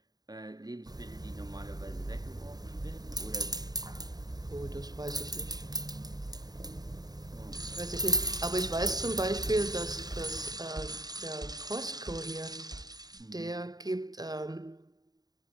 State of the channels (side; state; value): left; late; 0.19 ms